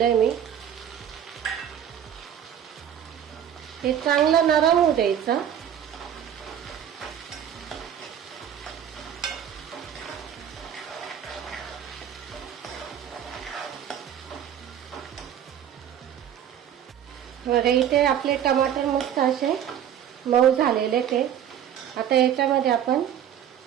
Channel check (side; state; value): left; quieter; 9.6 dB